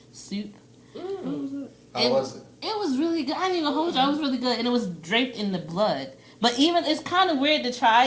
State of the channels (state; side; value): identical; both; correlation 1.00